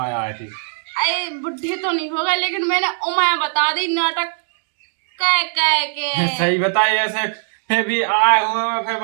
आए थे? अरे बुढ़े तो नहीं होगा लेकिन मैंने उमाया बता दी नाटक कह के सही बताइए ऐसे फिर भी आए हुए फिर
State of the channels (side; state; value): left; silent; digital silence